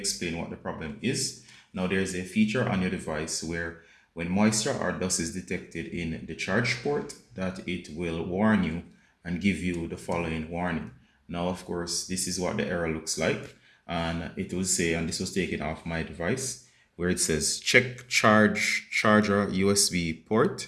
what the problem is. Now there's a feature on your device where when moisture or dust is detected in the charge port, that it will warn you and give you the following warning. Now, of course, this is what the error looks like. And it will say, and this was taken off my device, where it says check charger USB port.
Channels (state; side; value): identical; both; correlation 1.00